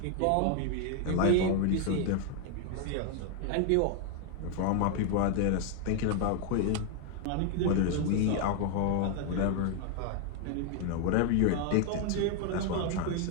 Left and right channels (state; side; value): different; both; correlation 0.01